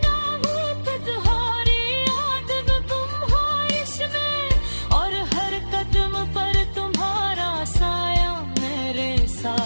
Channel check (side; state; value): both; inverted; correlation -1.00